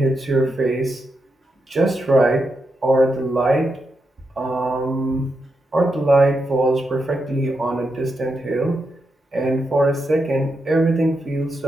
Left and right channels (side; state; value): both; normal; correlation 0.85